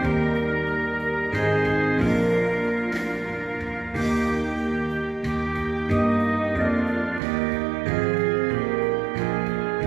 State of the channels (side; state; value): left; drops out; at 7.2 s